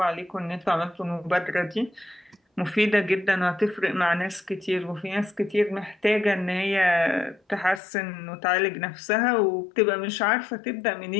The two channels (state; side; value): drops out; right; at 7.8 s